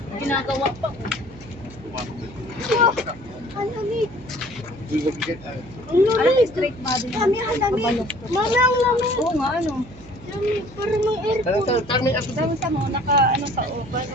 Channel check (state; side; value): noise; right; hum, 20 dB below the sound